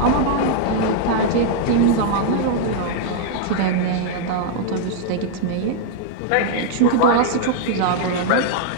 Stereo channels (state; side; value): different; both; correlation 0.00